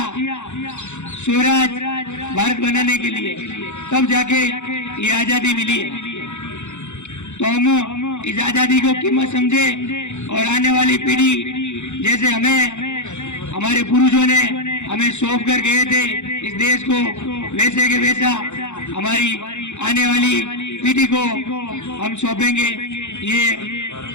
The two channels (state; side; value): late; right; 0.83 ms